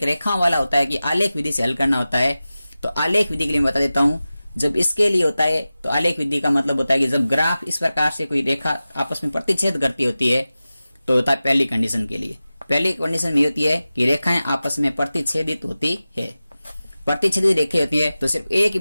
रेखा वाला होता है कि आलेख विधि से हल करना होता है। तो आलेख विधि के लिए बता देता हूं। जब इसके लिए होता है तो आलेख विधि का मतलब होता है कि जब ग्राफ इस प्रकार से कोई रेखा आपस में प्रतिच्छेद करती होती है तो होता है पहली कंडीशन के लिए। पहली कंडीशन ये होती है कि रेखाएं आपस में प्रतिच्छेदित होती है। प्रतिच्छेदित रेखाएं होती है तो सिर्फ एक ही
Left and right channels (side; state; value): both; inverted; correlation -0.95